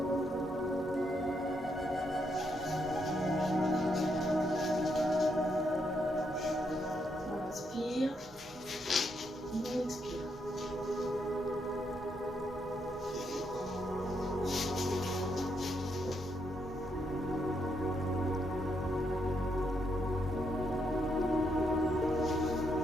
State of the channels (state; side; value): noise; left; hum, 28 dB below the sound